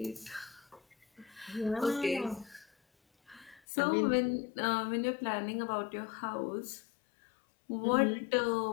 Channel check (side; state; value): right; drops out; at 3.6 s